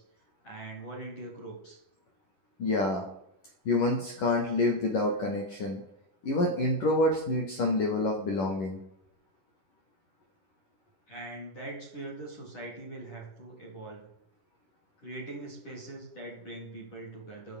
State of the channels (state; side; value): late; right; 11 ms